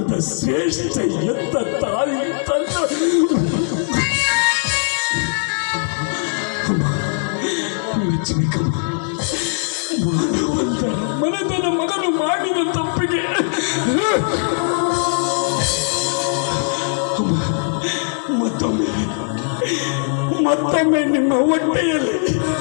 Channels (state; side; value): silent; right; digital silence